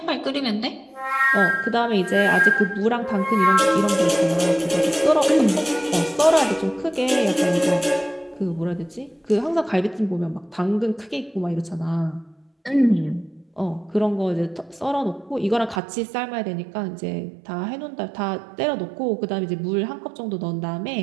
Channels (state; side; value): drops out; left; at 15.8 s